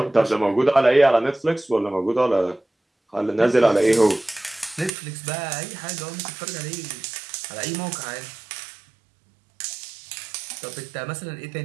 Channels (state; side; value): drops out; left; at 4.9 s